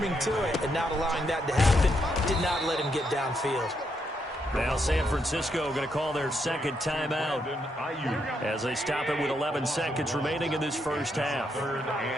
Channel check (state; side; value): normal; both; correlation 0.78